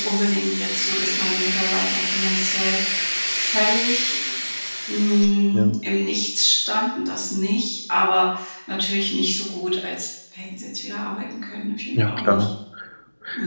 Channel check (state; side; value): inverted; both; correlation -1.00